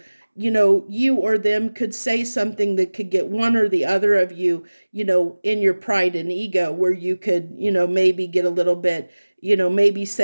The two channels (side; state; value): both; inverted; correlation -1.00